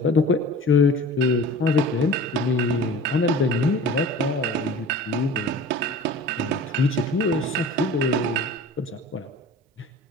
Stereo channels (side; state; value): both; normal; correlation 0.40